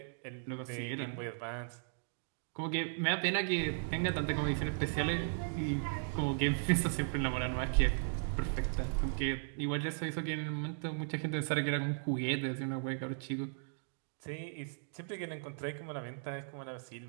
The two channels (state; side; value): silent; left; digital silence